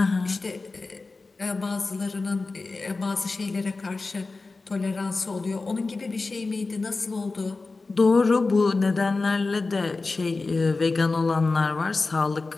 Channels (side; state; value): right; quieter; 3.7 dB